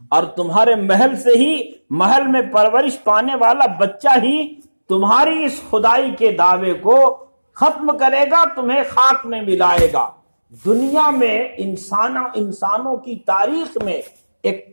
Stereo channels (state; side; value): inverted; both; correlation -1.00